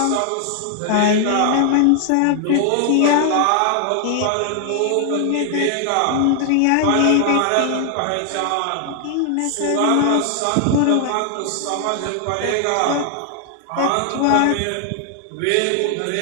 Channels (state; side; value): different; both; correlation 0.00